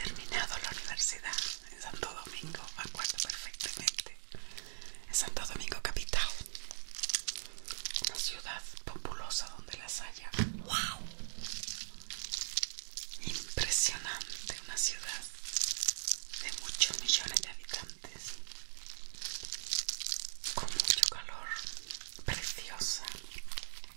la universidad en Santo Domingo, me acuerdo perfectamente. En Santo Domingo capital, una ciudad populosa donde las haya. ¡Wow! Impresionante, una ciudad de muchos millones de habitantes.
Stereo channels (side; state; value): left; silent; digital silence